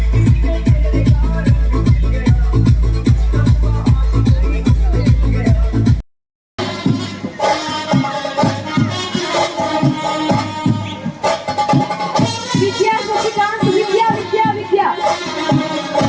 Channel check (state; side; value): identical; both; correlation 1.00